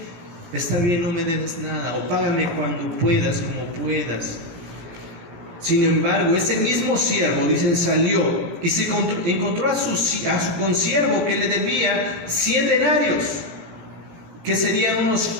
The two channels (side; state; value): left; late; 17 ms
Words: no me debes nada, o págame cuando puedas, como puedas. Sin embargo, ese mismo siervo, dicen, salió y se encontró a su consiervo que le debía 100 denarios, que serían